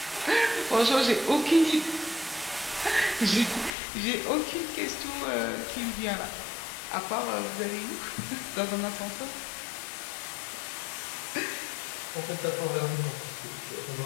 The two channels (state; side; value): drops out; right; at 3.7 s